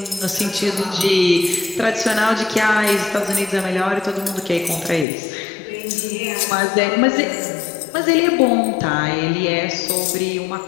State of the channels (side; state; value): right; drops out; at 5.1 s